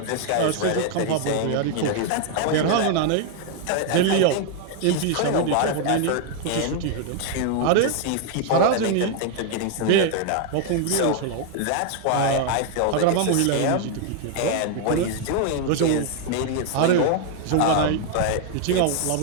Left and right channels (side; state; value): both; different; correlation 0.00